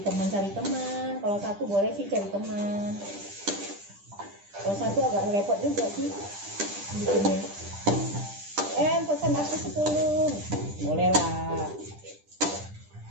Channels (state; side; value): late; left; 10 ms